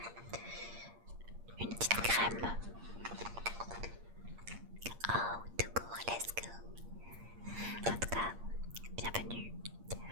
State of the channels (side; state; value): left; late; 8.7 ms